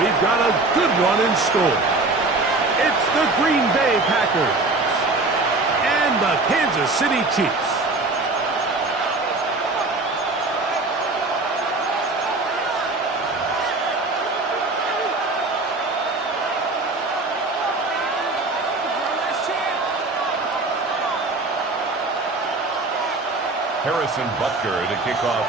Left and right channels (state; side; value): quieter; left; 3.3 dB